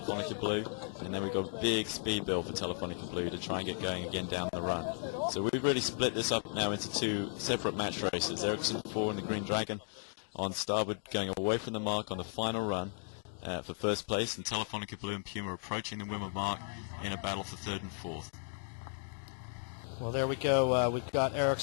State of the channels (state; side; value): silent; right; digital silence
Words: Blue, and then we've got a big speed build for Telefonica Blue to try and get going again down the run. So we've really split this up now into 2 separate match races. Ericsson 4 and the Green Dragon on starboard going away from the mark on the final run for first place, and Telefonica Blue and Puma approaching the Wimmer mark in a battle for third and fourth. Well, there we go. We've got